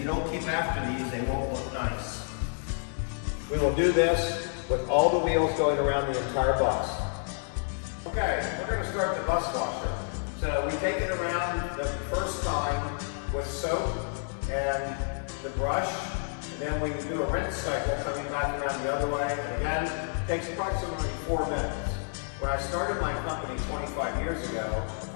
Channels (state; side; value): silent; right; 58 dB below the other